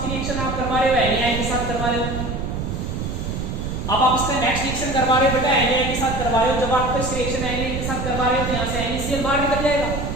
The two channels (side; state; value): right; noise; rumble, 4 dB below the sound